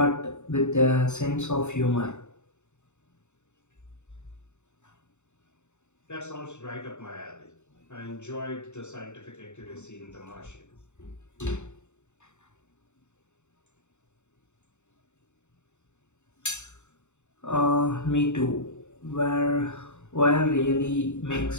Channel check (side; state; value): right; late; 0.84 ms